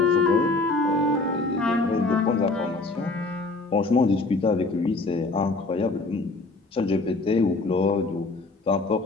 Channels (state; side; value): quieter; right; 3.4 dB